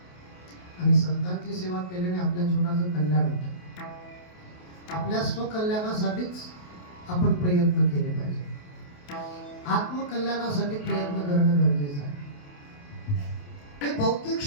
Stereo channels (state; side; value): late; right; 28 ms